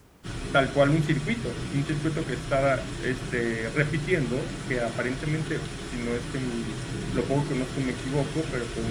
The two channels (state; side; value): identical; both; correlation 1.00